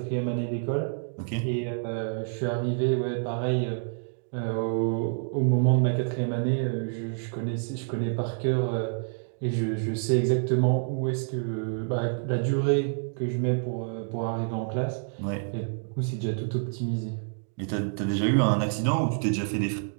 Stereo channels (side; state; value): left; silent; digital silence